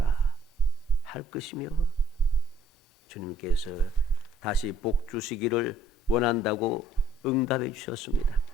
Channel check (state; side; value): normal; both; correlation 0.62